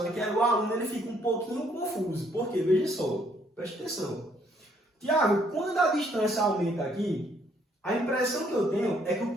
aqui, o aluno ele fica um pouquinho confuso. Por quê? Veja só, preste atenção. Tiago, quando a distância aumenta aqui, a impressão que eu tenho é que o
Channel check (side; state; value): both; normal; correlation 0.67